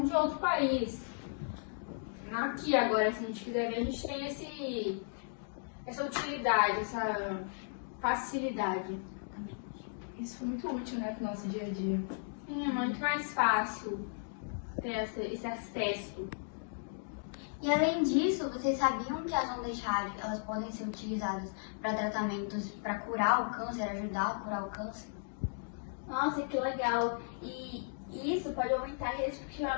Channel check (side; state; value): right; silent; digital silence